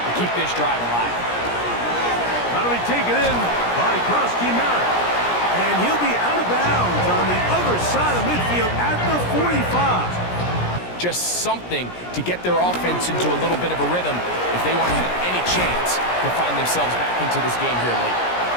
keep this drive alive. That'll be taken in by Krosky Merritt. And he'll be out of bounds on the other side of midfield at the 45. Just something to get their offense into a little bit of a rhythm if they want to have any chance to find themselves back into this game here late.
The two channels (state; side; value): late; right; 17 ms